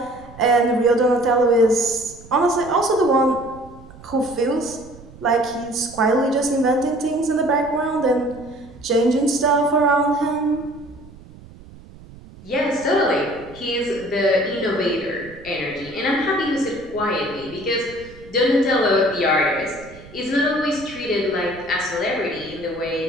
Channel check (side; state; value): right; noise; rumble, 20 dB below the sound